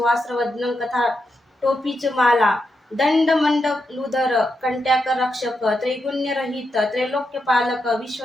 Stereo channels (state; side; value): normal; both; correlation 0.85